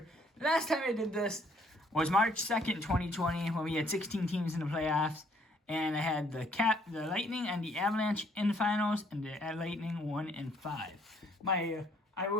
The last time I did this was March 2nd, 2020, when we had 16 teams in the playoffs. And I had the Lightning and the Avalanche in the finals, and the Lightning 1 and 5. I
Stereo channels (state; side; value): normal; both; correlation 0.64